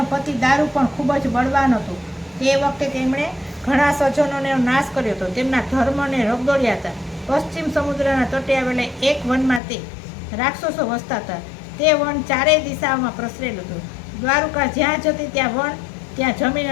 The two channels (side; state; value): right; drops out; at 9.6 s